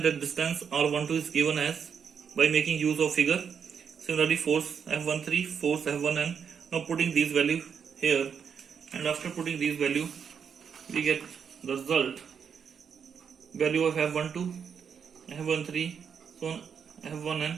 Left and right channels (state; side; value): quieter; left; 7.0 dB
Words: at distance r12 is given as by making use of figure. Similarly, force F13, force F1n. Now putting these value here, and after putting these value, we get the result value of F12, F13, so on F1n,